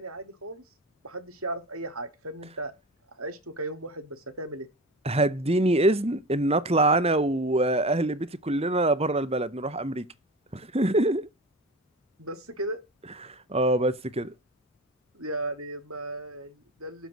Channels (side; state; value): both; normal; correlation 0.31